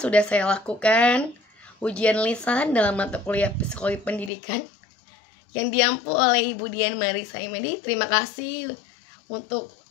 saya lakukan ujian lisan dalam mata kuliah psikologi pendidikan yang diampu oleh Ibu Dian Marisa Imedi. Terima kasih untuk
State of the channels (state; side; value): drops out; right; at 4.3 s